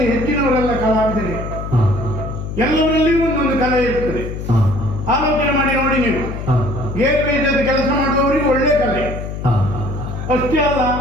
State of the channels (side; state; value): left; noise; hum, 7 dB below the sound